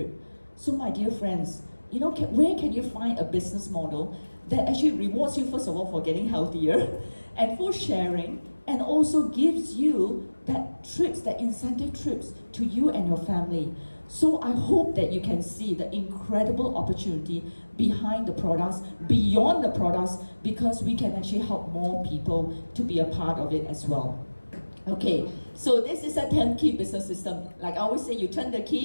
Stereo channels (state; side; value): inverted; both; correlation -1.00